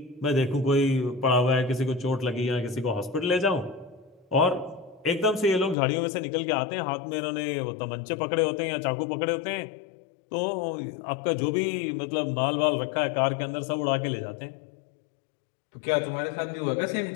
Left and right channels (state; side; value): drops out; right; at 5.8 s